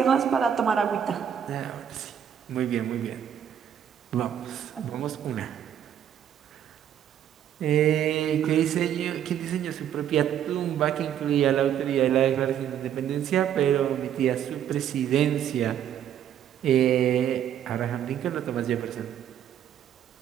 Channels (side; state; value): left; quieter; 9.7 dB